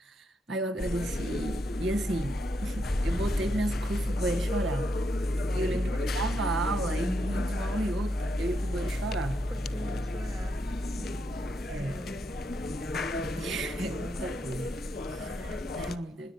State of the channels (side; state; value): both; normal; correlation 0.80